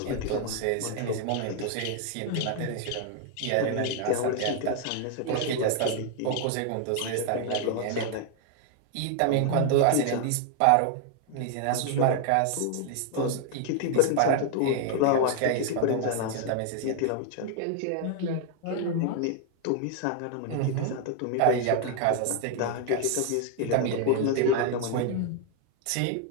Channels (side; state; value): both; different; correlation 0.00